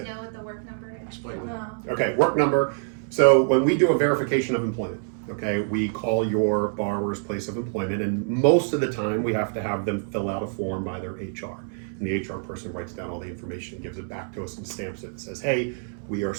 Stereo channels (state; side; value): silent; left; 61 dB below the other